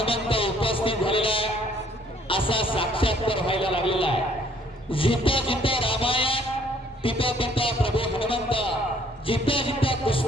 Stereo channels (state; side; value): normal; both; correlation 0.61